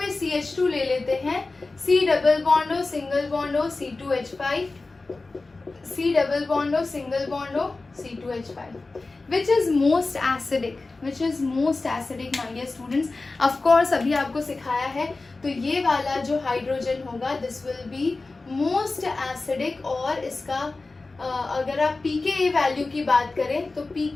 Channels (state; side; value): quieter; right; 3.5 dB